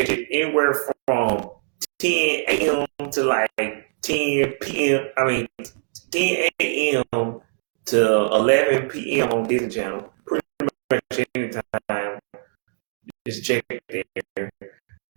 it anywhere from 10 a.m. to like 10 p.m. 10 a.m. to 11 p.m. on Disney Channel. Pretty much anytime. Just check it there.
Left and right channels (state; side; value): silent; left; digital silence